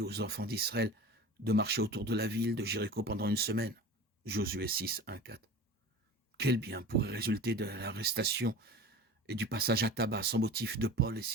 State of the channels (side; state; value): both; normal; correlation 0.36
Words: aux enfants d'Israël de marcher autour de la ville de Jéricho pendant une semaine? Josué 6, 1, 4. Quel bien pourrait résulter de l'arrestation et du passage à tabac sans motif de Paul et